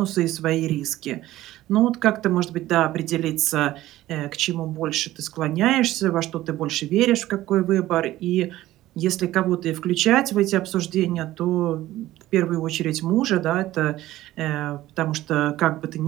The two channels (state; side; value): quieter; left; 15.5 dB